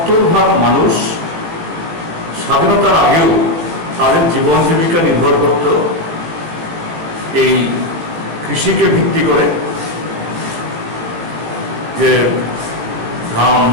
মানুষ স্বাধীনতার আগেও তাদের জীবন জীবিকা নির্ভর করত এই কৃষিকে ভিত্তি করে, যে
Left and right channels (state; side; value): late; left; 18 ms